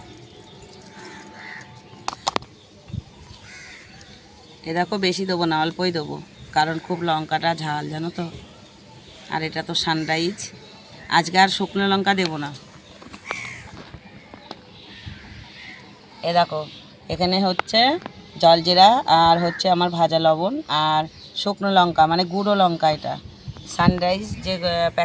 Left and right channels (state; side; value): identical; both; correlation 1.00